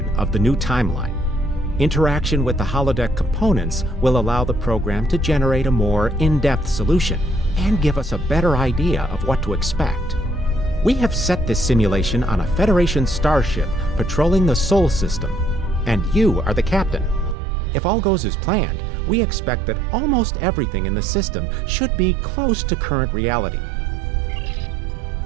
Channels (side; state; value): left; drops out; at 17.4 s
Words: of the new timeline. Interaction with the holodeck components will allow the program to generate a more in-depth solution and give us a better idea of what to expect. We have set this simulation on a Federation starship patrolling the Sol system, and you are the captain. If all goes as planned, we expect that almost everything in the system should be close to current reality.